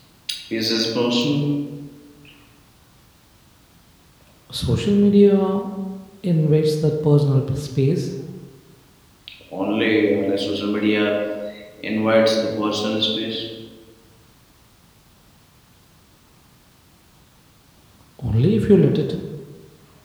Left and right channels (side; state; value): both; identical; correlation 1.00